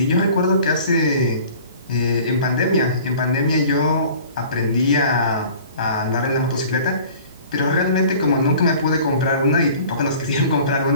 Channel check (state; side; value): inverted; both; correlation -0.46